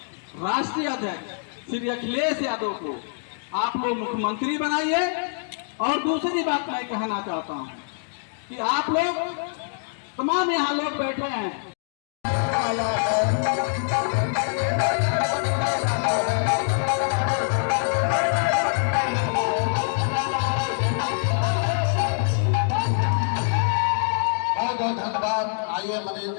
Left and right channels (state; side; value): silent; right; digital silence